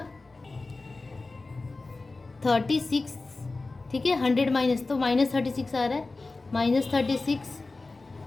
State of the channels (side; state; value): right; quieter; 3.5 dB